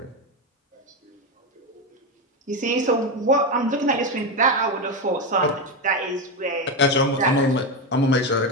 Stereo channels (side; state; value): both; normal; correlation 0.12